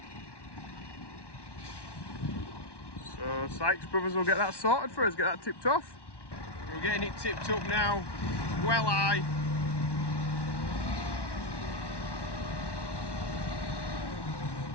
So Sykes Brothers will get that sorted for us, get that tipped off. We're getting it tipped up now, well high.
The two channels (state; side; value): late; right; 1.1 ms